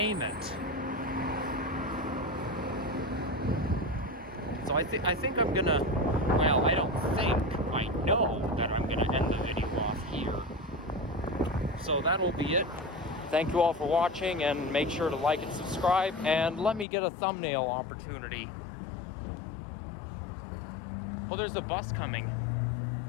it. So I think I'm gonna, well, I don't think, I know that I'm gonna end the video off here. So that'll be it. Thank you all for watching, and make sure to like and subscribe, and let me get a thumbnail opportunity. Well, there's a bus coming.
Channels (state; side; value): drops out; right; at 16.9 s